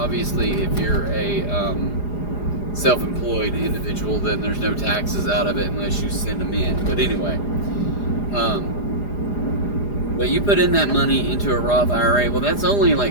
if you're a self-employed individual, then there's no taxes out of it unless you send them in. But anyway, but you put in that money into a Roth IRA, well, that's only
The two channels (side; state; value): right; late; 4.9 ms